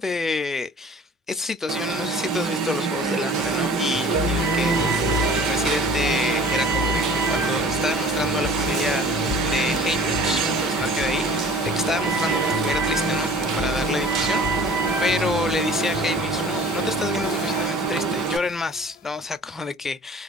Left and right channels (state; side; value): normal; both; correlation 0.47